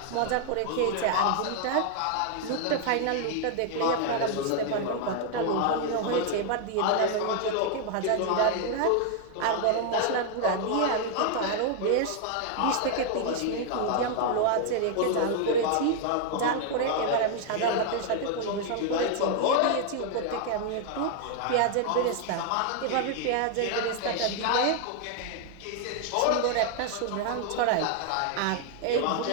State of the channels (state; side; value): different; both; correlation 0.00